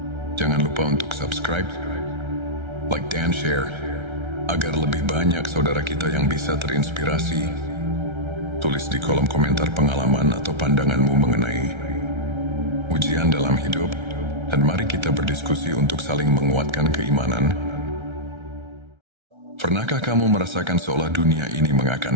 jangan lupa untuk subscribe, like dan share, agar lebih banyak saudara kita yang bisa terinspirasi. Tulis di kolom komentar pengalaman atau pandanganmu mengenai ujian dalam hidup, dan mari kita berdiskusi untuk saling menguatkan keimanan. Pernahkah kamu merasakan seolah dunia ini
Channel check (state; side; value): late; left; 1.3 ms